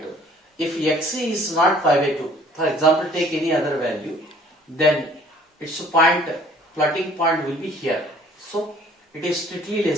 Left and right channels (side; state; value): both; normal; correlation 0.55